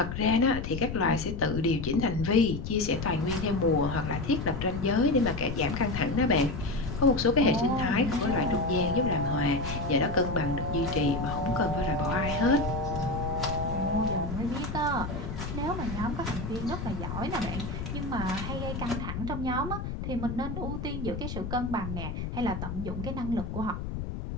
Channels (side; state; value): left; noise; rumble, 5 dB below the sound